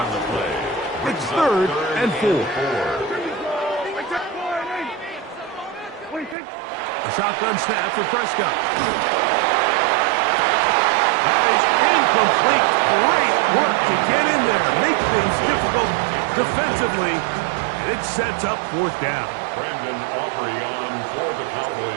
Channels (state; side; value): drops out; left; at 6.4 s